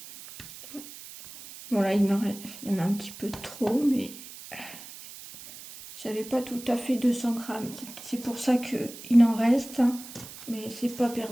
Bon là, il y en a un petit peu trop, mais j'avais pas tout à fait 200 grammes. C'est pour ça qu'il en reste. Mais c'est pas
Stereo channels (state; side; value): noise; right; hiss, 15 dB below the sound